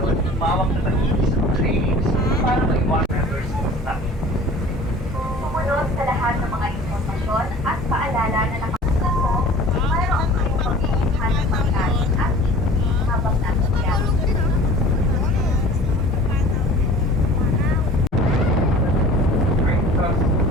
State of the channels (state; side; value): normal; both; correlation 0.44